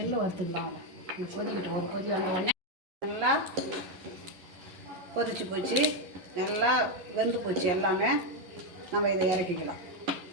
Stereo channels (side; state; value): left; late; 11 ms